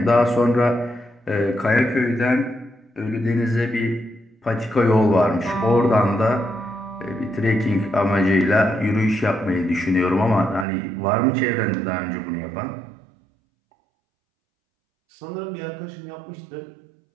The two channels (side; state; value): left; drops out; at 10.7 s